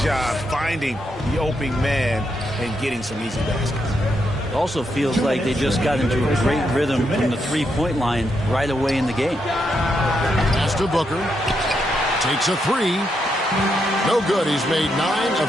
finding the opening man and getting some easy baskets. It also feels like they just got into a great rhythm from the three-point line right away in the game. Pass to Booker. Takes a 3. No good. He's made 9 of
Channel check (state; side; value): normal; both; correlation 0.81